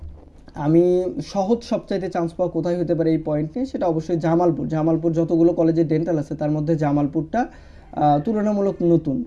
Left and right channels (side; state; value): both; identical; correlation 1.00